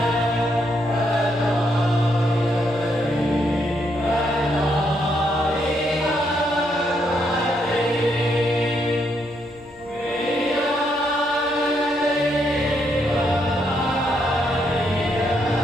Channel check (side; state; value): right; noise; hum, 27 dB below the sound